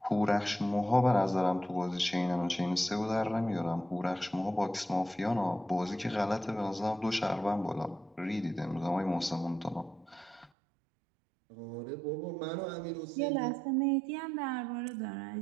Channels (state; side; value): drops out; left; at 10.5 s